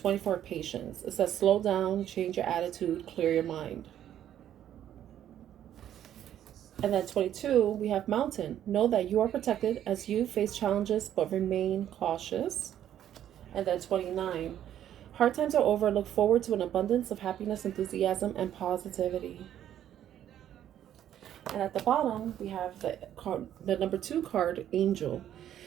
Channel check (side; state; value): left; quieter; 10.9 dB